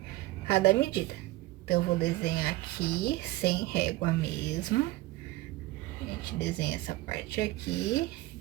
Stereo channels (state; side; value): quieter; left; 18.6 dB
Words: cada medida. Então, eu vou desenhar aqui, sem régua mesmo. A gente desenha essa parte aqui, a